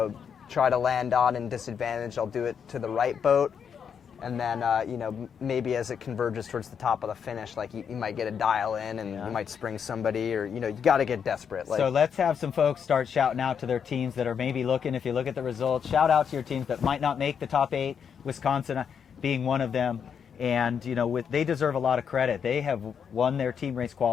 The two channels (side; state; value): right; quieter; 7.3 dB